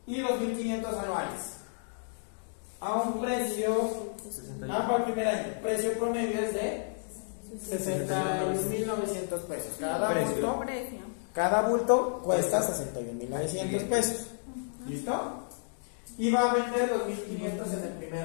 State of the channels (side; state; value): right; silent; digital silence